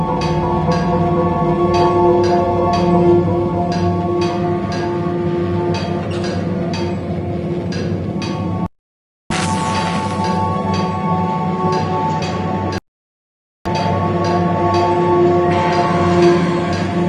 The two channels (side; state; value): both; identical; correlation 1.00